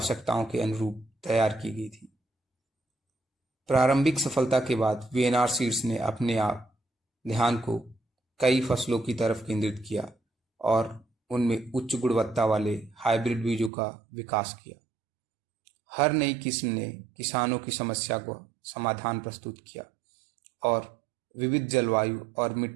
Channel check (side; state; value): left; drops out; at 13.7 s